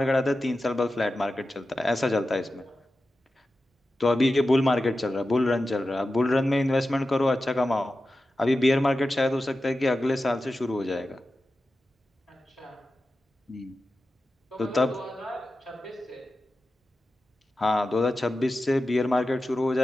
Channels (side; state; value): both; normal; correlation 0.93